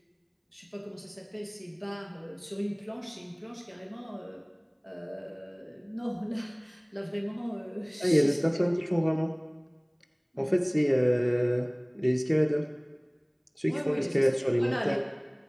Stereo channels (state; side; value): identical; both; correlation 1.00